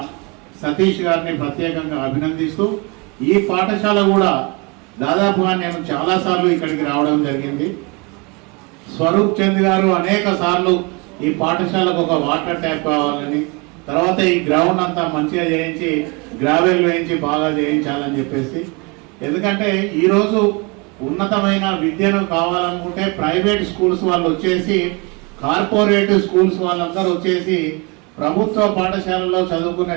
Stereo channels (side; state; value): left; quieter; 29.4 dB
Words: సతీష్ గారిని ప్రత్యేకంగా అభినందిస్తూ, ఈ పాఠశాల కూడా దాదాపుగా నేను చాలాసార్లు ఇక్కడికి రావడం జరిగింది. స్వరూప్ చంద్ గారు అనేక సార్లు ఈ పాఠశాలకు ఒక వాటర్ ట్యాప్ కావాలని, తర్వాత ఈ గ్రౌండ్ అంతా మంచిగా చేయించి గ్రావెల్ వేయించి బాగా చేయించాలని చెప్పేసి, ఎందుకంటే ఈరోజు ఉన్నతమైన విద్యను కావాలనుకుంటే ప్రైవేట్ స్కూల్స్ వాళ్ళు వచ్చేసి, కార్పొరేట్ స్కూల్స్ వాళ్ళందరూ వచ్చేసి ప్రభుత్వ పాఠశాలలో చదువుకునే